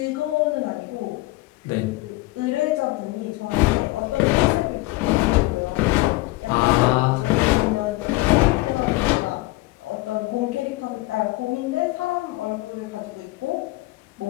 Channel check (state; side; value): quieter; right; 20.5 dB